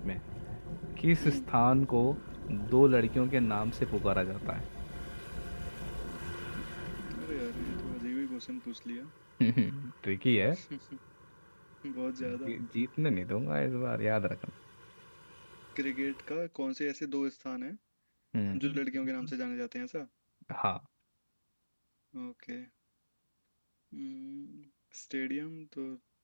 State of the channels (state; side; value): inverted; both; correlation -1.00